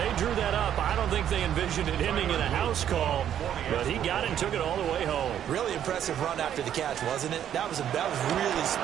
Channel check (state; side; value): quieter; left; 10.1 dB